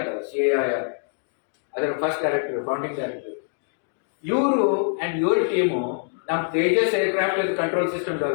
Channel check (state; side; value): silent; right; digital silence